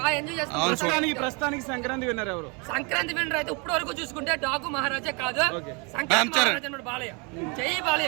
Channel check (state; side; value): quieter; left; 32.1 dB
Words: బాగా ఎంజాయ్ చేస్తాం. ప్రస్తుతానికి సంక్రాంతి విన్నర్ ఎవరు? సంక్రాంతి విన్నర్ అయితే ఇప్పటి వరకు చూసుకుంటే డాకు మహారాజా కాదు, సంక్రాంతి మహారాజా బాలయ్య. జై